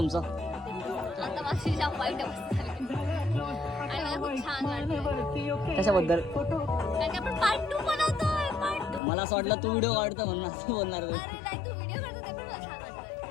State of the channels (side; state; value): right; drops out; at 9.0 s